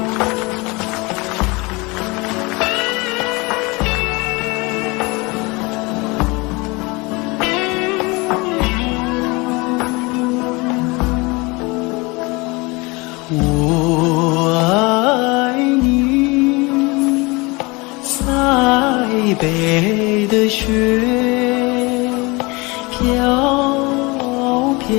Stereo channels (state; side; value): quieter; right; 25.7 dB